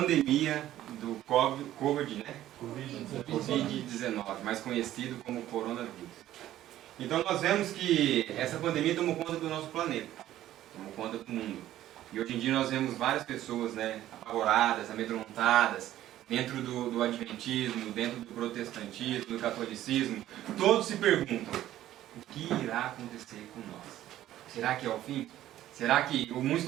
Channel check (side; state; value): left; quieter; 13.3 dB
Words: do Covid, né? Covid-19, mais conhecido como coronavírus. Então nós vemos que essa pandemia tomou conta do nosso planeta, tomou conta do mundo. E hoje em dia nós vemos várias pessoas, né, apavoradas, amedrontadas, dentro do adventismo, dentro do protestantismo, do catolicismo. Todos se perguntam, o que irá acontecer com nós? Será que é o fim? Será que muitos